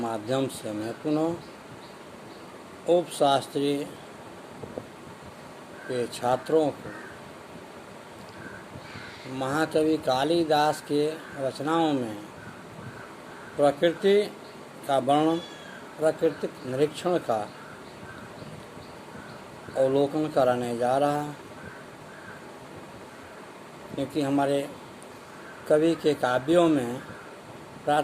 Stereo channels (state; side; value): identical; both; correlation 1.00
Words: से मैं पुनः उपशास्त्री के छात्रों को महाकवि कालिदास के रचनाओं में प्रकृति का वर्णन, प्राकृतिक निरीक्षण का अवलोकन कराने जा रहा है, क्योंकि हमारे कवि के काव्यों में